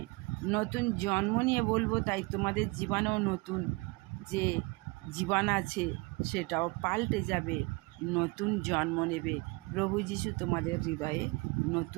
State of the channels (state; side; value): quieter; left; 26.3 dB